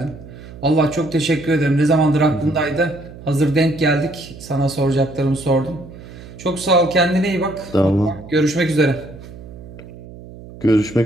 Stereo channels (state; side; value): noise; right; hum, 16 dB below the sound